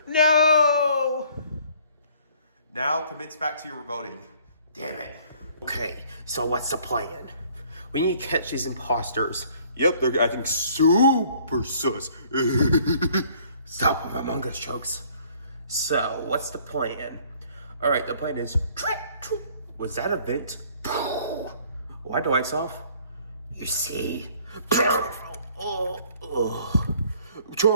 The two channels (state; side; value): inverted; both; correlation -0.58